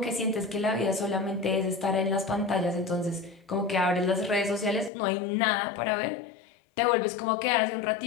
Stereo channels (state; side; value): drops out; right; at 4.9 s